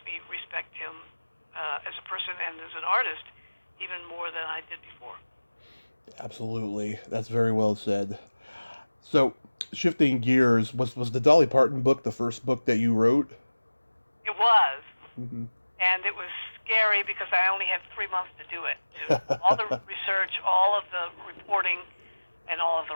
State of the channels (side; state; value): both; inverted; correlation -1.00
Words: me respect him as a person and as an artist even more than I did before. Absolutely. That's very well said. So, shifting gears, was the Dolly Parton book the first book that you wrote? It was. Mm-hmm. And it was scary because I only had 3 months to do it. All the research, all of the reporting, and all of